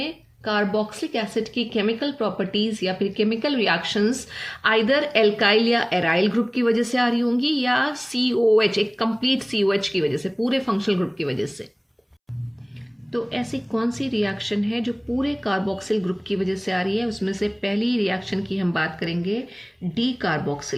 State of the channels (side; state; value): both; identical; correlation 1.00